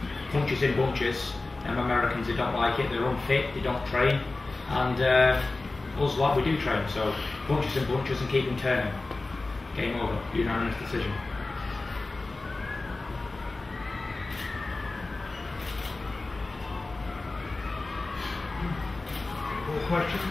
Punches in bunches. Americans, they don't like it. They're unfit. They don't train, and us lot we do train. So punches in bunches and keep him turning. Game over. Unanimous decision. More questions?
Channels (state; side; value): quieter; right; 3.3 dB